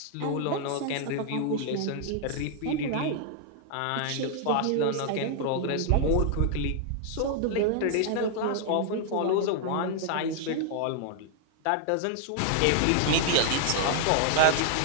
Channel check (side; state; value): both; different; correlation 0.00